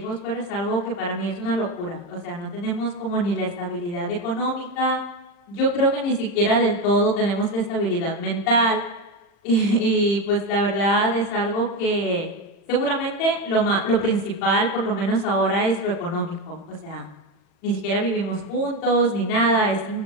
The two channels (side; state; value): right; late; 40 ms